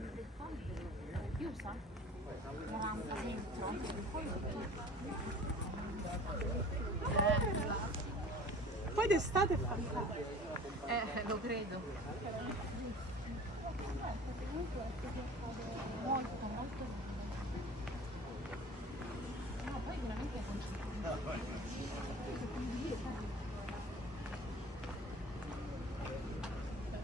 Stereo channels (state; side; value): normal; both; correlation 0.43